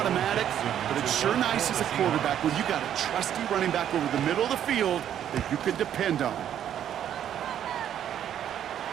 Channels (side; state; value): left; quieter; 10.2 dB